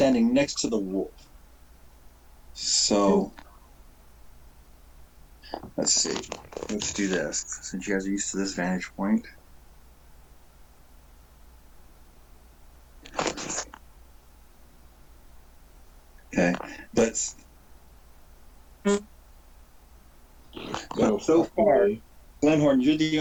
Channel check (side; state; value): both; identical; correlation 1.00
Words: next to the wolf. So let's see. Let's do this since you guys are used to this vantage point. Okay, but so far, Glenhorn, you're the